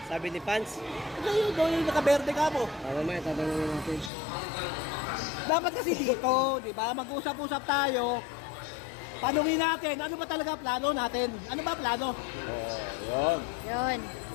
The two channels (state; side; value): drops out; right; at 4.1 s